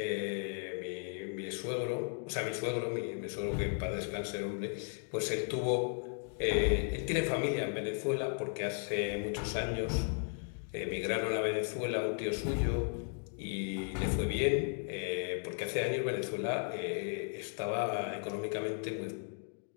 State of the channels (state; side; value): silent; right; 54 dB below the other